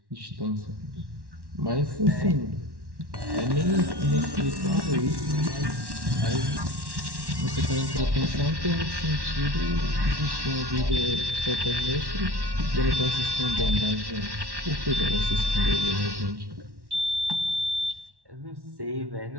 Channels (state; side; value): late; left; 1.1 ms